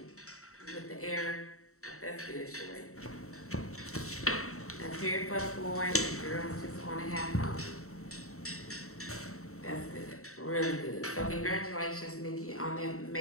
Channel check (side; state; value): right; late; 0.64 ms